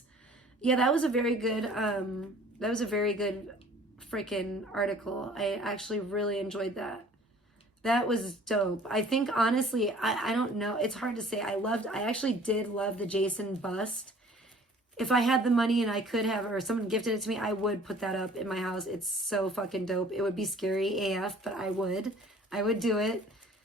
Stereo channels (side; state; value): both; normal; correlation 0.51